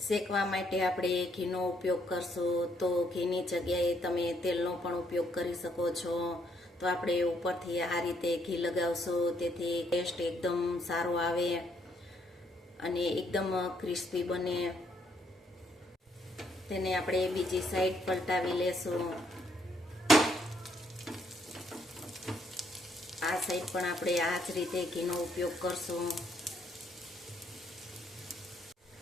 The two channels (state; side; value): normal; both; correlation 0.71